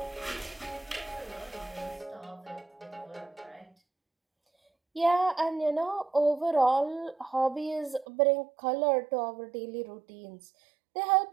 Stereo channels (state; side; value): drops out; left; at 8.1 s